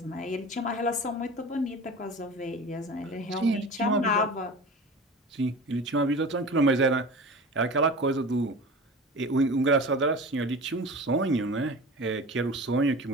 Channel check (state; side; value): normal; both; correlation 0.35